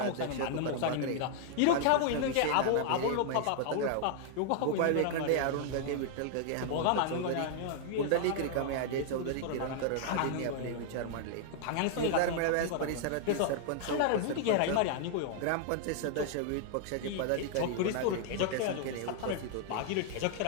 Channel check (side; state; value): both; different; correlation 0.00